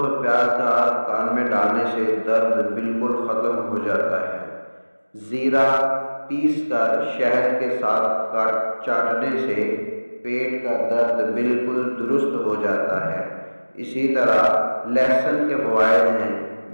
پیاز کا کان میں ڈالنے سے درد بالکل ختم ہو جاتا ہے۔ زیرہ پیس کر شہد کے ساتھ چاٹنے سے پیٹ کا درد بالکل درست ہو جاتا ہے۔ اسی طرح لہسن کے فوائد ہیں،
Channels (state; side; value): inverted; both; correlation -1.00